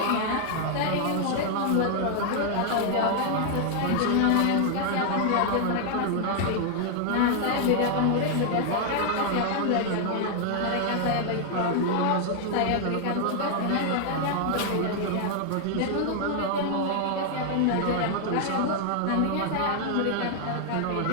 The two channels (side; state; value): both; different; correlation 0.00